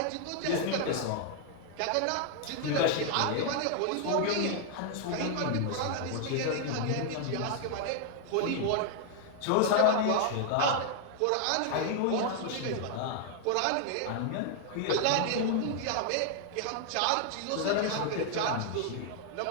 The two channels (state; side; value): different; both; correlation 0.00